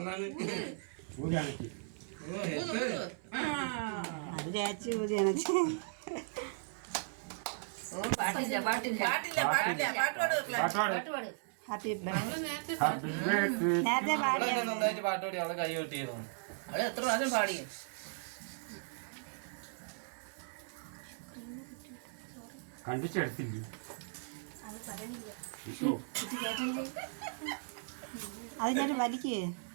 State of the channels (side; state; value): left; silent; 53 dB below the other